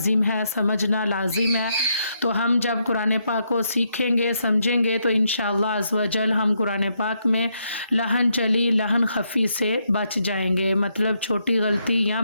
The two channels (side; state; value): both; inverted; correlation -0.77